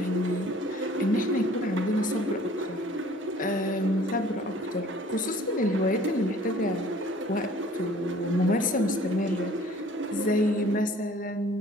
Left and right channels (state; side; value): normal; both; correlation 0.52